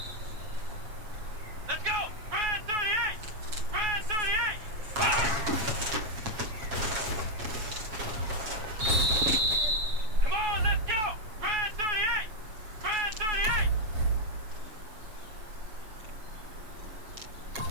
Let's go! Brand 38! Brand 38! Come on, let's go! Brand 38! Brand 38!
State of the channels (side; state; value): left; late; 7.0 ms